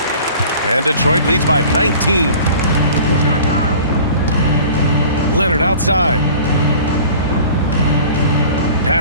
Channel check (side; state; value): both; inverted; correlation -0.44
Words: And Detroit leads by 19. Leonard outside.